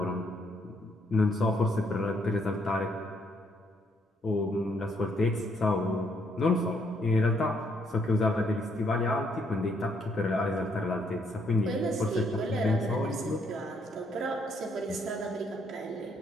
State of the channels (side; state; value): both; normal; correlation 0.71